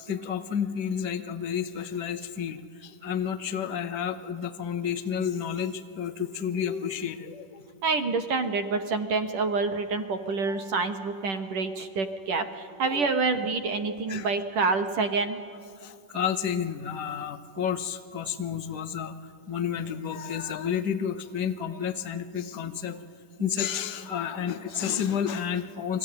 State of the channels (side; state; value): left; late; 10 ms